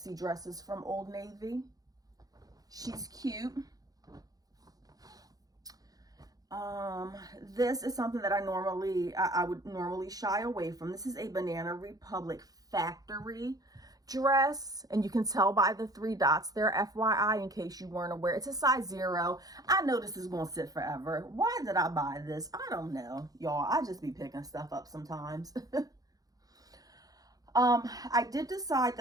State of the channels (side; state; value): left; late; 0.18 ms